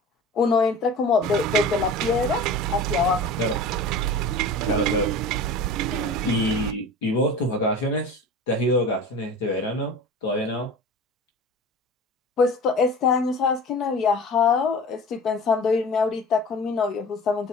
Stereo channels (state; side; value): normal; both; correlation 0.36